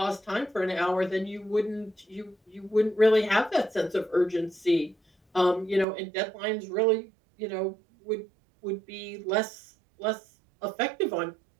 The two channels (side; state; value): left; drops out; at 5.9 s